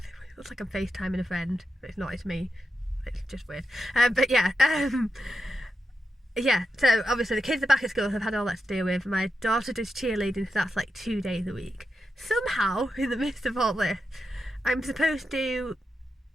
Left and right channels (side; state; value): both; normal; correlation 0.87